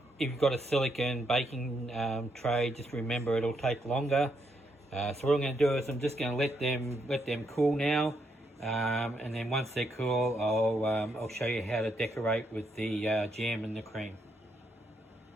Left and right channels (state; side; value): normal; both; correlation 0.78